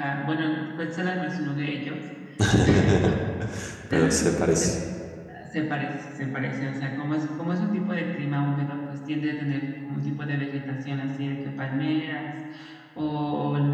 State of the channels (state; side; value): identical; both; correlation 1.00